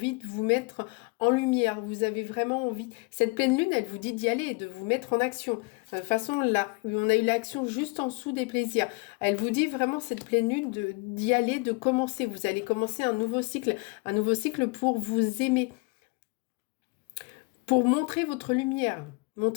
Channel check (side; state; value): right; quieter; 29.5 dB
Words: de vous mettre en lumière. Vous avez vraiment envie... Cette pleine lune, elle vous dit d'y aller, de vous mettre en action. De toute façon, là, on a eu l'action juste en dessous des plaisirs. Elle vous dit vraiment, cette pleine lune, d'y aller, de commencer. Vous allez commencer un nouveau cycle pour vous aimer. Pour montrer votre lumière.